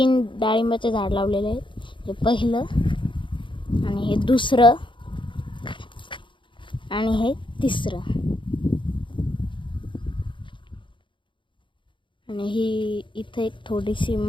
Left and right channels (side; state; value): right; late; 0.24 ms